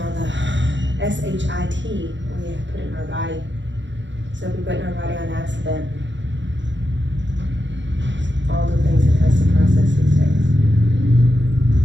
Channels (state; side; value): late; left; 0.53 ms